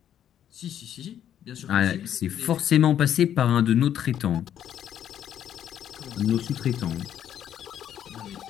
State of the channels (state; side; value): quieter; right; 10.2 dB